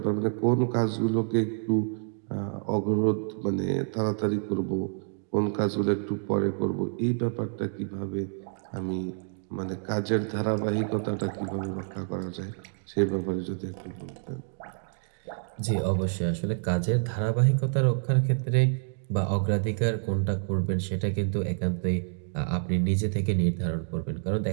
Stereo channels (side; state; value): left; silent; digital silence